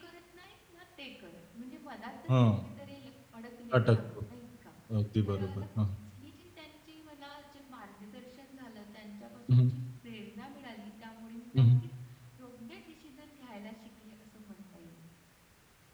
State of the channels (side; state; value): both; identical; correlation 1.00